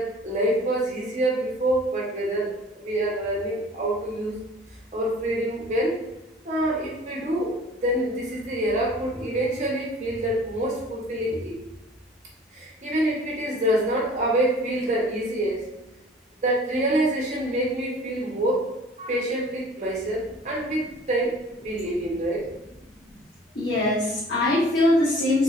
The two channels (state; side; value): normal; both; correlation 0.48